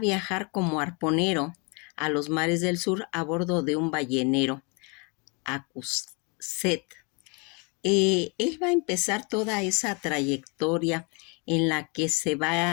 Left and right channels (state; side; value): quieter; right; 32.4 dB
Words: como arponero a los mares del sur a bordo de un ballenero, Acuset. Él va a empezar toda esa trayectoria en la que se